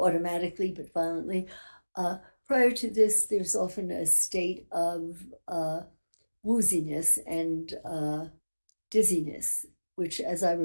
but violently, prior to this, there's often a state of wooziness and dizziness, which, as I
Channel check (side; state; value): both; inverted; correlation -1.00